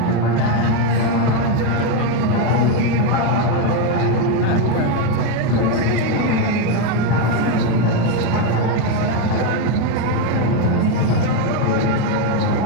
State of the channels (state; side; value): different; both; correlation 0.03